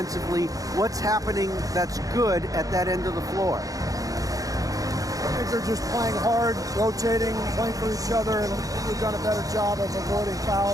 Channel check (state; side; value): late; left; 0.17 ms